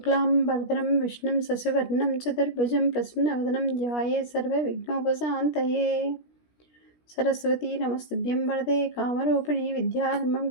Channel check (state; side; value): late; right; 17 ms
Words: విష్ణుం శశివర్ణం చతుర్భుజం ప్రసన్నవదనం ధ్యాయే సర్వవిఘ్నోపశాంతయే. సరస్వతీ నమస్తుభ్యం వరదే కామరూపిణి విద్యారంభం